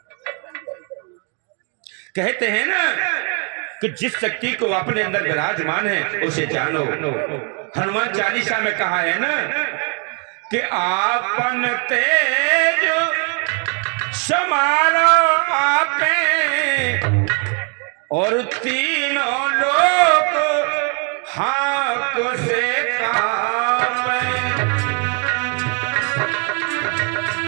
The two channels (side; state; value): left; quieter; 38.2 dB